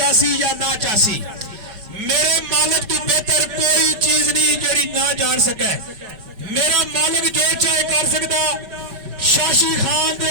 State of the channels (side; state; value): left; late; 5.2 ms